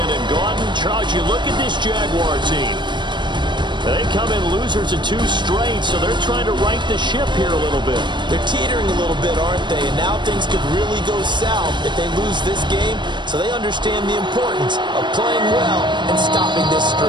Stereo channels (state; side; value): late; left; 0.22 ms